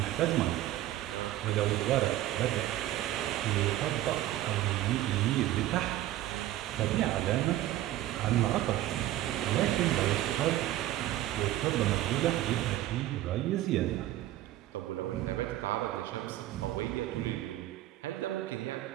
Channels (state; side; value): quieter; left; 14.4 dB